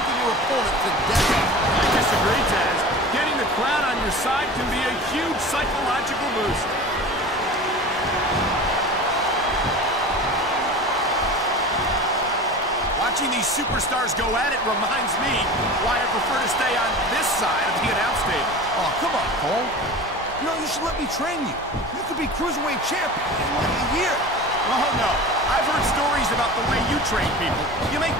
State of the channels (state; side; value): normal; both; correlation 0.35